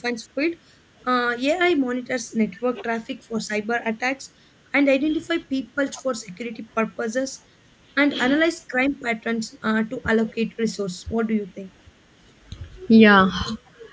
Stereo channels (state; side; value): identical; both; correlation 1.00